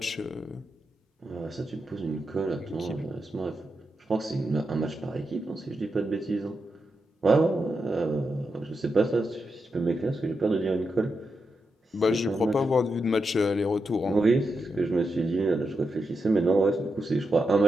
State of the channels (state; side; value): normal; both; correlation 0.86